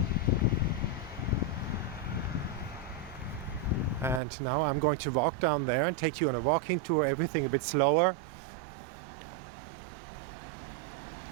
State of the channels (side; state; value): left; drops out; at 4.2 s